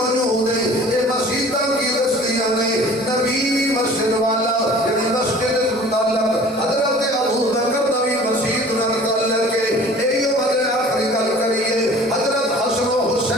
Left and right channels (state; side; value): normal; both; correlation 0.46